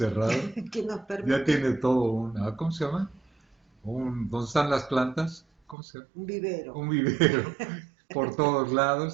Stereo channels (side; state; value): left; drops out; at 5.8 s